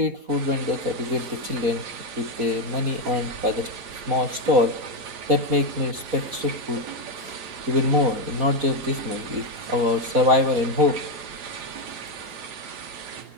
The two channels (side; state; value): left; late; 4.1 ms